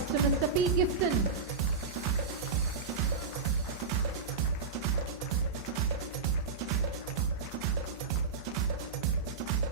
to Mr. P. Gifton.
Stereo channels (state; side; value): quieter; left; 4.9 dB